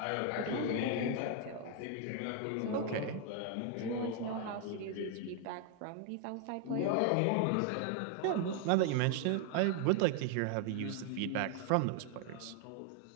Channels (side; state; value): both; different; correlation 0.00